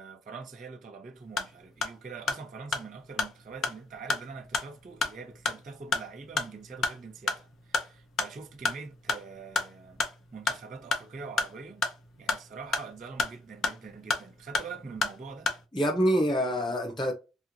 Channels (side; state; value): both; normal; correlation 0.72